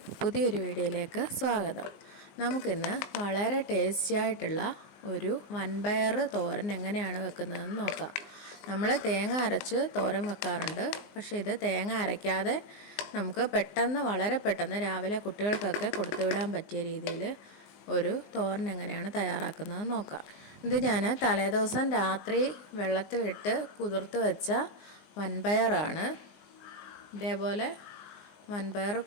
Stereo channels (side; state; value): right; late; 19 ms